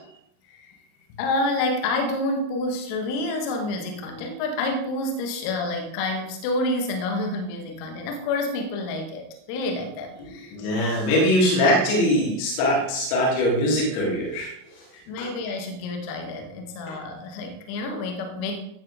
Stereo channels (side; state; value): right; late; 38 ms